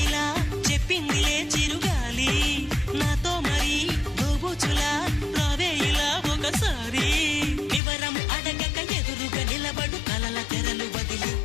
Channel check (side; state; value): right; drops out; at 7.8 s